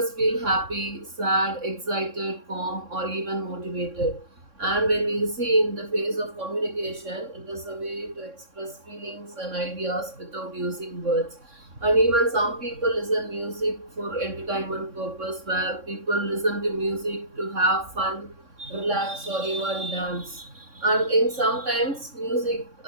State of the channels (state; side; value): late; left; 3.6 ms